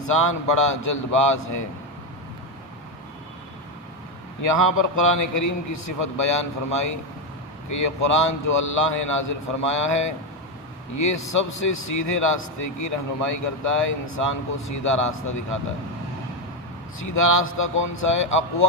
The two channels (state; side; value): normal; both; correlation 0.07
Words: بڑا جلد باز ہے۔ یہاں پر قرآن کریم کی صفت بیان فرمائی کہ یہ قرآن جو اللہ نے نازل فرمایا ہے یہ سب سے سیدھے راستے کی رہنمائی کرتا ہے، انسان کو سیدھا راستہ دکھاتا ہے۔ سیدھا راستہ کون سا ہے؟